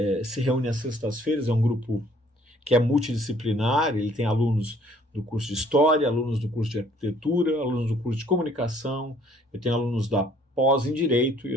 se reúne às sextas-feiras, é um grupo que é multidisciplinar, ele tem alunos do curso de História, alunos do curso de Arquitetura, alunos do curso de Comunicação, eu tenho alunos da pós em Direito e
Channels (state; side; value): normal; both; correlation 0.60